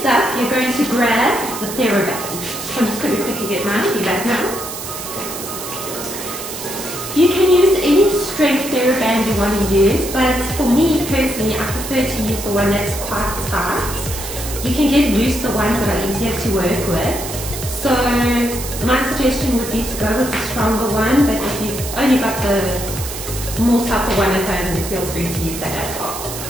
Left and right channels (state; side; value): noise; right; hiss, 8 dB below the sound